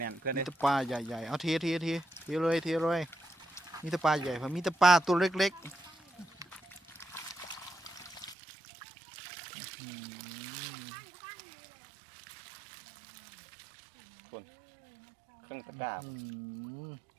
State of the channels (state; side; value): drops out; left; at 8.3 s